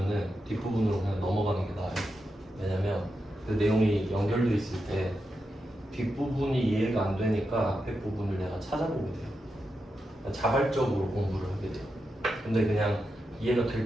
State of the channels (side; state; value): both; normal; correlation 0.87